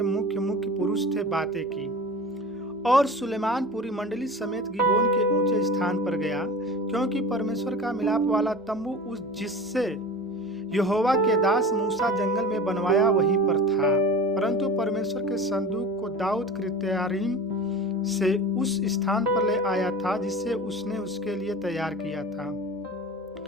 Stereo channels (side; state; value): both; normal; correlation 0.35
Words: मुख्य मुख्य पुरुष थे बातें की। और सुलेमान पूरी मंडली समेत गिबोन के ऊंचे स्थान पर गया, क्योंकि परमेश्वर का मिलाप वाला तंबू उस जिससे यहोवा के दास मूसा जंगल में बनवाया वहीं पर था। परंतु परमेश्वर के संदूक को दाऊद किर्यतायीम से उस स्थान पर ले आया था जिससे उसने उसके लिए तैयार किया था।